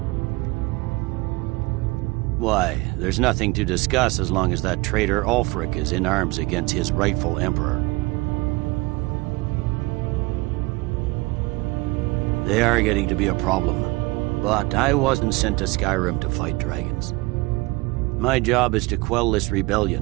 Why, there's nothing to discuss as long as that traitor Ulfric is in arms against his rightful emperor. They are getting to be a problem, but I wasn't sent to Skyrim to fight dragons. My job is to quell this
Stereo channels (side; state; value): left; quieter; 23.7 dB